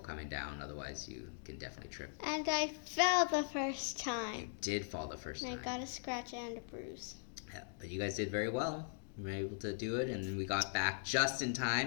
down, otherwise you can definitely trip. And I fell the first time. You did fall the first time. I got a scratch and a bruise. Yeah, but you guys did very well. We were able to do it, and then we got back just in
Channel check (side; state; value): right; silent; digital silence